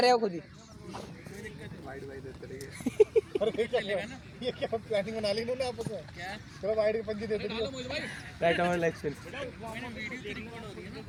हो खुद ही। वाइड वाइड देते रहिए। ये क्या प्लानिंग बना ली इन्होंने आपस में? क्या? चलो वाइड के पंजी दे दे। डालो मोहित भाई, राइट ओवर लेग स्पिन।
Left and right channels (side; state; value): both; identical; correlation 1.00